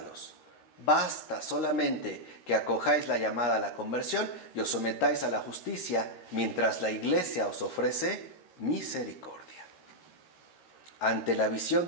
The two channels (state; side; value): late; right; 13 ms